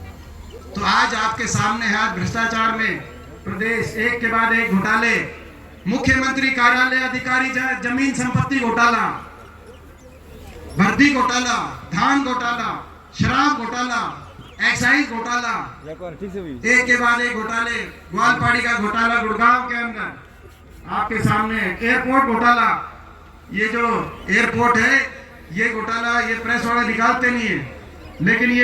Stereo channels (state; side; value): identical; both; correlation 1.00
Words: तो आज आपके सामने है, आज भ्रष्टाचार में प्रदेश एक के बाद एक घोटाले, मुख्यमंत्री कार्यालय अधिकारी जमीन संपत्ति घोटाला, भर्ती घोटाला, धान घोटाला, शराब घोटाला, एक्साइज घोटाला, एक के बाद एक घोटाले, ग्वालपाड़ी का घोटाला गुड़गांव के अंदर आपके सामने, एयरपोर्ट घोटाला, ये जो एयरपोर्ट है ये घोटाला, ये प्रेस वाले निकालते नहीं है, लेकिन